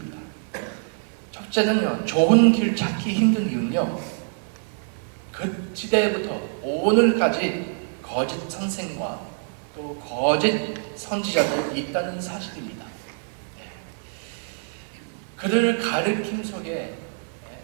첫째는요, 좁은 길 찾기 힘든 이유는요, 그 시대부터 오늘까지 거짓 선생과 또 거짓 선지자들이 있다는 사실입니다. 그들 가르침 속에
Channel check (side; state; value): left; silent; 62 dB below the other